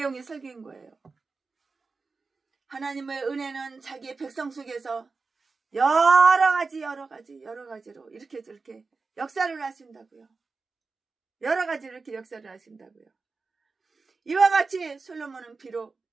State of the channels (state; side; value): quieter; left; 4.2 dB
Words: 설교인 거예요. 하나님의 은혜는 자기의 백성 속에서 여러 가지로 이렇게 저렇게 역사를 하신다고요. 여러 가지 이렇게 역사를 하신다고요. 이와 같이 솔로몬은 비록